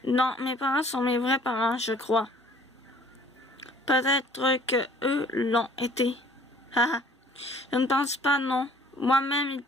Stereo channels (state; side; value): normal; both; correlation 0.55